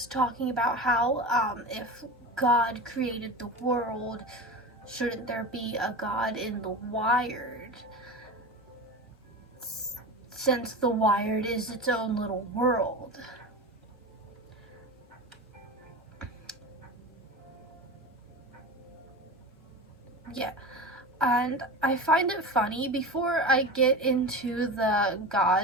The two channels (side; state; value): both; normal; correlation 0.28